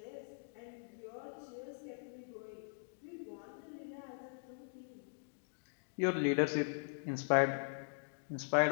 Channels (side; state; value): right; silent; digital silence